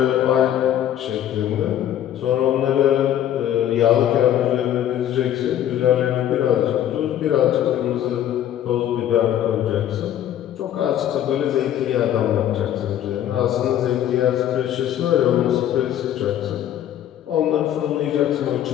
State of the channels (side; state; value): right; quieter; 11.1 dB